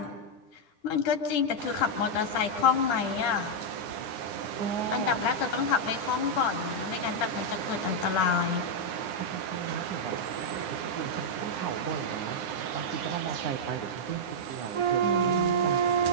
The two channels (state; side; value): late; right; 9.9 ms